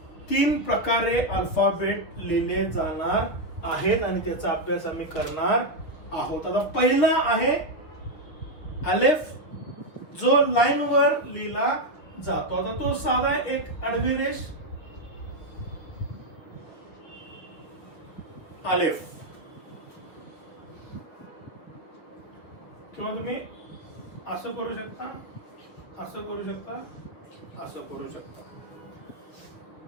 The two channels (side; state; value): right; late; 6.5 ms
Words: 3 प्रकारे अल्फाबेट लिहिले जाणार आहेत. आणि त्याचा अभ्यास आम्ही करणार आहोत. आता पहिला आहे अलेफ, जो लाईन वर लिहिला जातो. आता तो साधा एक आडवी रेष अलेफ, किंवा तुम्ही असं करू शकता, असं करू शकता, असं करू शकता.